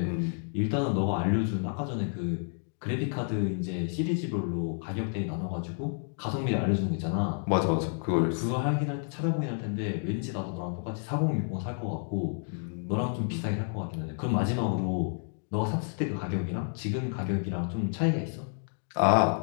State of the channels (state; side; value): silent; right; 58 dB below the other